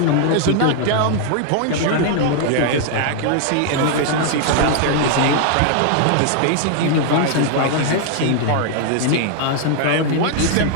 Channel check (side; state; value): both; different; correlation 0.00